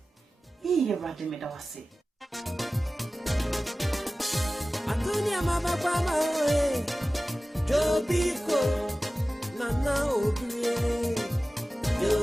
iye rade medawase Antonia mama kwa mawe Jobiko nana obie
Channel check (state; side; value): normal; both; correlation 0.96